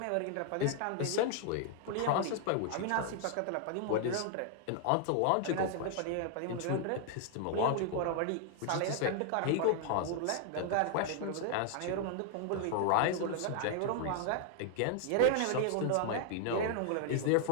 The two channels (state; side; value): different; both; correlation 0.00